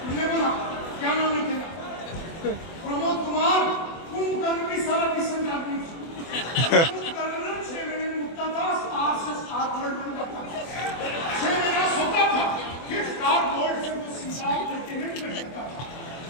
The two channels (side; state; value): right; late; 24 ms